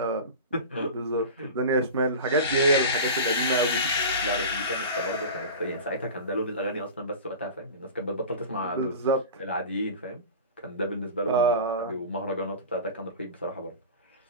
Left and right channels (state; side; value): inverted; both; correlation -0.32